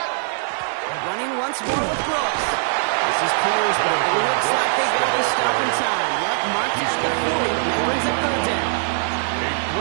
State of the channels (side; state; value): left; silent; 65 dB below the other